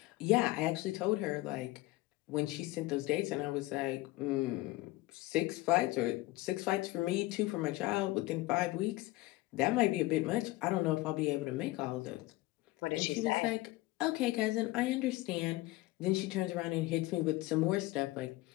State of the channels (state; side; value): quieter; right; 19.3 dB